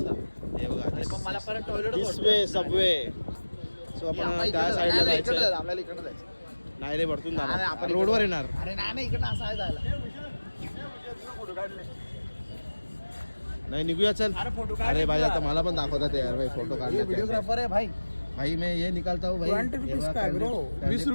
हे बघा पण मला परत टॉयलेट सबवे सो आपण त्या साईडला जायचं. आपल्याला इकडे जायचं. नाही रे, वरतून जाणार आपण, रोडवर येणार. अरे नाही इकडनं असं आहे जायला. नाही निघूया चल. फोटो अरे भाई आता मला पण दाखवतात यार भाई, फोटो काढले. व्हिडिओग्राफर आहे भाई. भाई मैं ये निकालता हूँ भाई. 20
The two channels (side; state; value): both; inverted; correlation -1.00